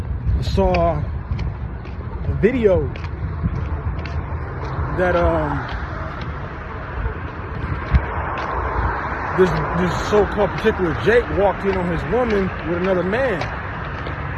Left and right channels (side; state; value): both; identical; correlation 1.00